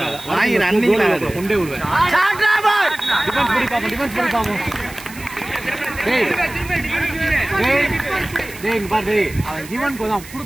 வாங்கி ரன்னிங்ல கொண்டே விடுவேன். டிஃபென்ஸ் பண்ணி பாப்போம், டிஃபென்ஸ் பண்ணி பாப்போம். டேய் டேய் டேய் இங்க பாரு. டேய் அவன் ஈவனுக்கு தான்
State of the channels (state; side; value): noise; right; hiss, 17 dB below the sound